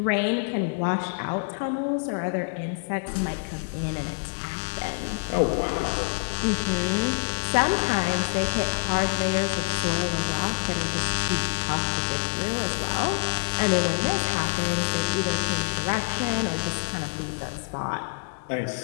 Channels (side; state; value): right; silent; digital silence